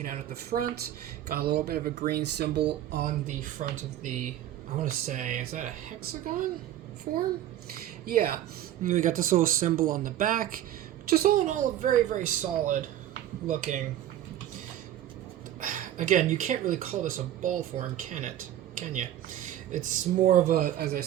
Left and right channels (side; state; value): left; quieter; 12.1 dB